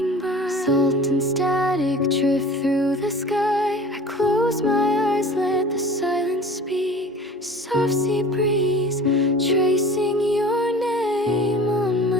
by. Salt and static drift through the sky. I close my eyes, let the silence speak. Soft sea breeze, tracing your name on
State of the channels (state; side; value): normal; both; correlation 0.42